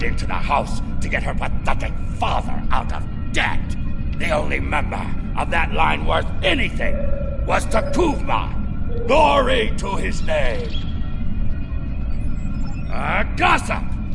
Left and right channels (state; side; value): identical; both; correlation 1.00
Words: into the house to get her pathetic father out of debt. The only member of that line worth anything was Takuvma. Glory to his name. Gossip!